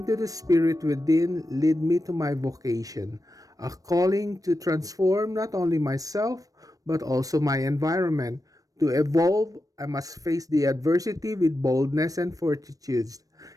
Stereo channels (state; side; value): late; left; 0.17 ms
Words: to the spirit within led me to my vocation, a calling to transform not only myself, but also my environment. To evolve, I must face the adversity with boldness and fortitude.